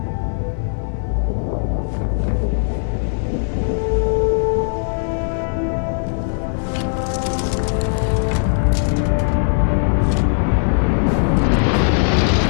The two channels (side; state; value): right; silent; 67 dB below the other